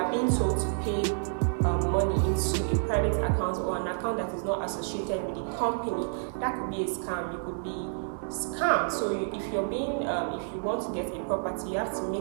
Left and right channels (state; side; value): silent; left; 58 dB below the other